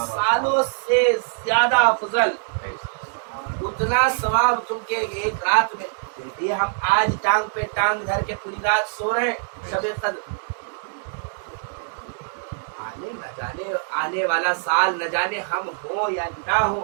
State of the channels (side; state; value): left; silent; digital silence